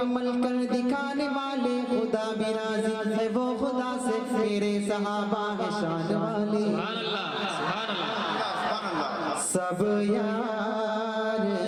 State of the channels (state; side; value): identical; both; correlation 1.00